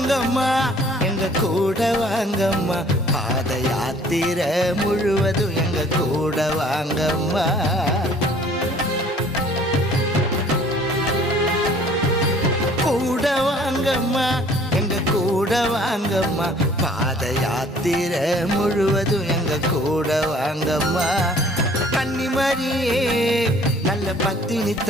வாங்கம்மா எங்க கூட வாங்கம்மா பாத யாத்திரை முழுவதும் எங்க கூட வாங்கம்மா கூட வாங்கம்மா எங்க கூட வாங்கம்மா பாத யாத்திரை முழுவதும் எங்க கூட வாங்கம்மா கன்னிமரியே நல்ல பத்தினி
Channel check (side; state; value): both; normal; correlation 0.55